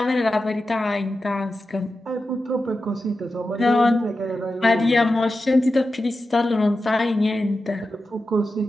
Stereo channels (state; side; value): normal; both; correlation 0.91